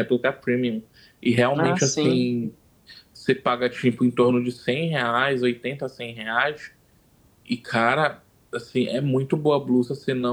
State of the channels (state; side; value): identical; both; correlation 1.00